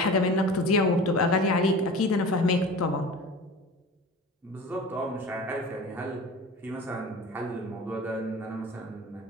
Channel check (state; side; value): normal; both; correlation 0.36